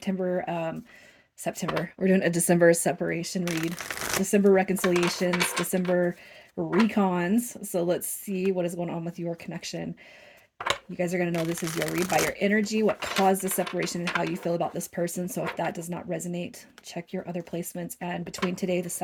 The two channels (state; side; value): identical; both; correlation 1.00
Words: We're doing a December separation read. December reconciliations, December recons. So let's see what is going on with your connection. You guys are going to know this is your read by your energy, what caused the separation, and how you feel about this person. So if that does not resonate, check your other placements. And between today, the